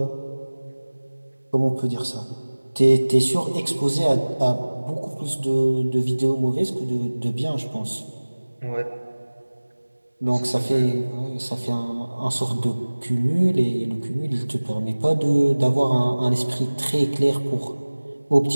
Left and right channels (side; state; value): both; inverted; correlation -1.00